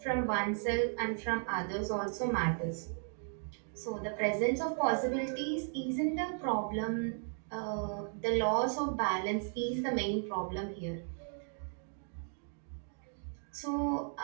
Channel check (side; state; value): left; silent; 54 dB below the other